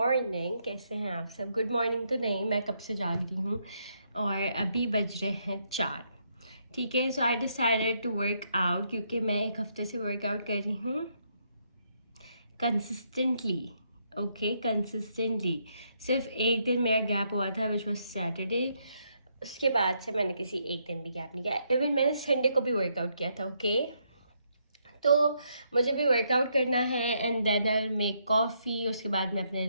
कैसे हैं आप सब? गुड मॉर्निंग तो नहीं, मैं कब से जाग रही हूँ और अभी बज रहे हैं 4। ठीक है, so I decided to work out क्योंकि मैं एक हफ्ते से वर्कआउट कर रही हूँ कंसिस्टेंटली। Okay, consistently. सिर्फ एक दिन मेरा गैप हुआ था विच वॉज सैटरडे। उसके बाद से मैंने किसी एक दिन भी गैप नहीं किया। इवन मैंने संडे को भी वर्कआउट किया था। ओके, तो मुझे भी वर्कआउट करना है and then I will make coffee. उसके बाद मैं अपने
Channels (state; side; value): inverted; both; correlation -0.75